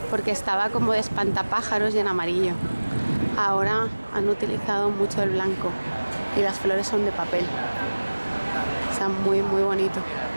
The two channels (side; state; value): both; inverted; correlation -1.00